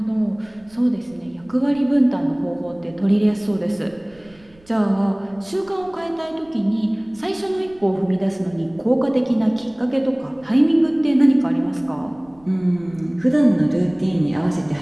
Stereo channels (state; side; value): noise; right; rumble, 28 dB below the sound